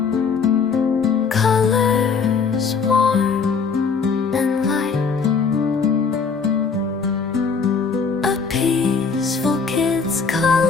colors warm and light, a peaceful kid's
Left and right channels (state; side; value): quieter; right; 5.4 dB